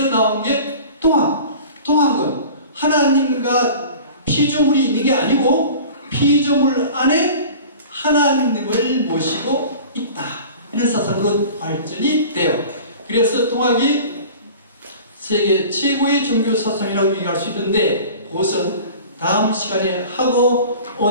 나온 게 동학. 동학은 하나님과 피조물이 있는 게 아니고 피조물 안에 하나님을 모시고 있다. 이런 사상으로 발전이 돼요. 그래서 동학이 세계 최고의 종교 사상이라고 얘기할 수 있는데, 그것은 다음 시간에 하고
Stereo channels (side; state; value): both; inverted; correlation -0.41